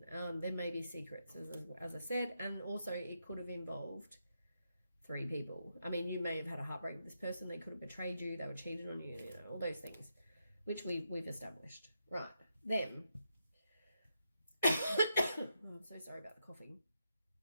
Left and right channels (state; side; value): inverted; both; correlation -0.82